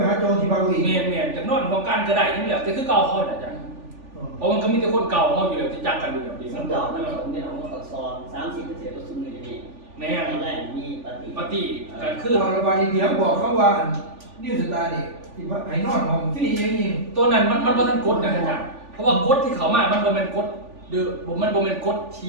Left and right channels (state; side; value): late; left; 3.4 ms